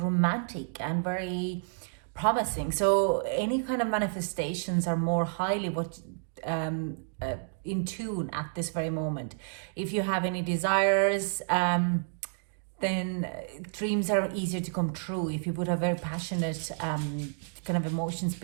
and very promising. So any kind of manifestations are more highly in tune at this very moment. If you have any desires, then dreams are easier to come true if you put a very passionate kind of emotions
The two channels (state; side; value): silent; left; digital silence